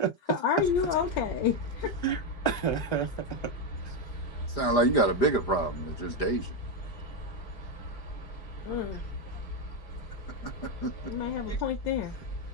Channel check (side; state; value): right; late; 5.0 ms